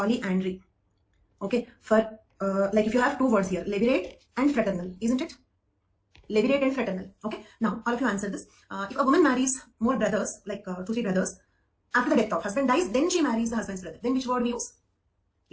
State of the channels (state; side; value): identical; both; correlation 1.00